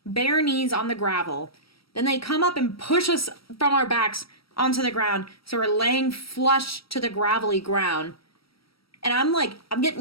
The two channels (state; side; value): late; right; 0.75 ms